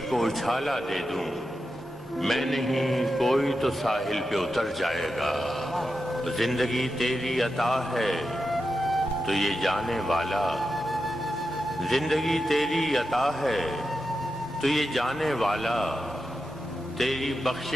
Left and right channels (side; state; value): both; normal; correlation 0.89